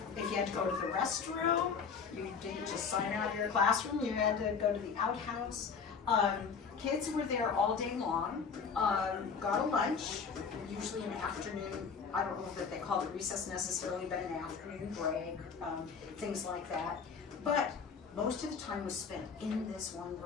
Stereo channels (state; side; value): quieter; right; 5.9 dB